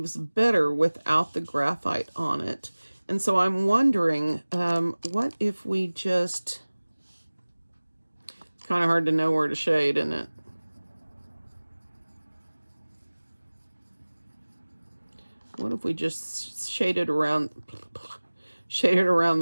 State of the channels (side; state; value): both; inverted; correlation -1.00